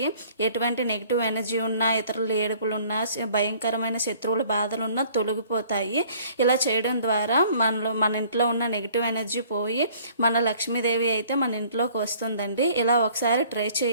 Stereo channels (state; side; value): inverted; both; correlation -0.55